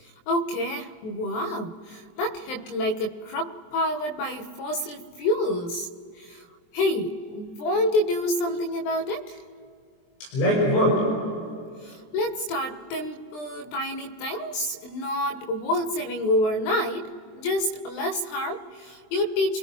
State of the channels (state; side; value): late; right; 23 ms